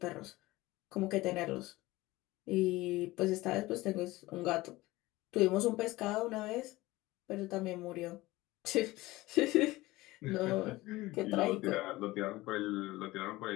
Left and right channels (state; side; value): quieter; right; 19.3 dB